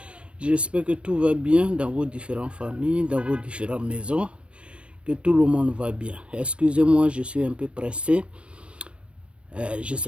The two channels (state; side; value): late; left; 0.060 ms